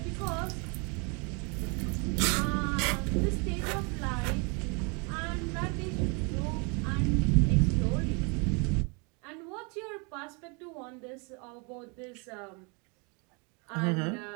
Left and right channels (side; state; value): left; quieter; 32.8 dB